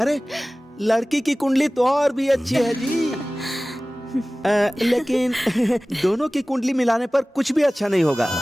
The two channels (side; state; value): both; normal; correlation 0.98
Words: लड़की की कुंडली तो और भी अच्छी है जी। लेकिन दोनों की कुंडली मिलाने पर कुछ भी अच्छा नहीं होगा।